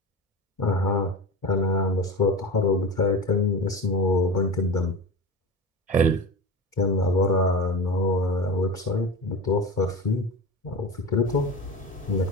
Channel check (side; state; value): both; normal; correlation 0.27